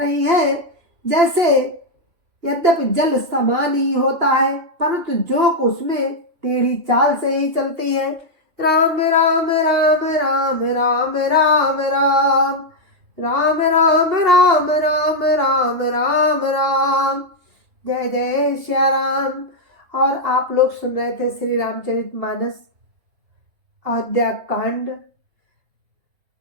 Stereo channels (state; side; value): late; left; 3.0 ms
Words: है। जैसे यद्यपि जल समान ही होता है परंतु जोक उसमें टेढ़ी चाल से ही चलती है। राम राम राम राम राम राम राम राम राम राम राम राम राम राम। जय जय श्या राम। और आप लोग सुन रहे थे श्री रामचरितमानस अयोध्या कांड,